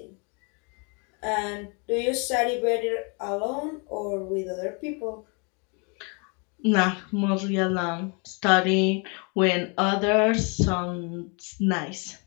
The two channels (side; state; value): right; quieter; 34.4 dB